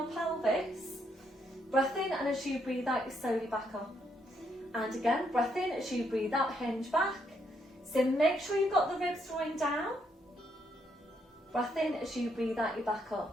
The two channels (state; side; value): normal; both; correlation 0.75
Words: pelvis. Breath in, and as you breathe out, you slowly back up. And again, breath in, as you breathe out, hinge back. So make sure you've got the ribs drawing down. Breath in, as you breathe out, you back